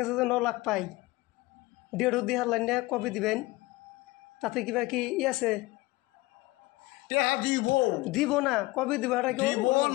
যে 9 লাখ পাই 1.5 দিহার লাইনে কবে দিবেন তাতে কিবা কি আছে টেহা দিব না কবে দিব এটা কি দিব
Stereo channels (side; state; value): right; quieter; 20.8 dB